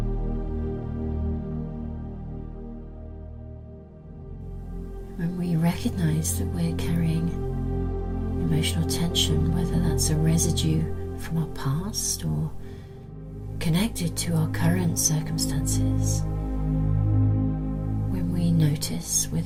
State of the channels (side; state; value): both; identical; correlation 1.00